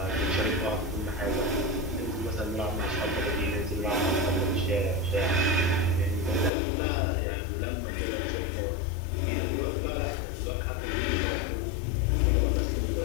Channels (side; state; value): right; drops out; at 6.5 s